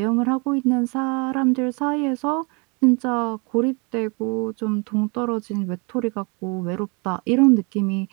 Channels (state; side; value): quieter; left; 32.0 dB